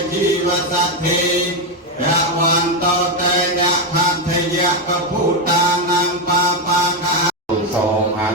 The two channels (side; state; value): both; normal; correlation 0.07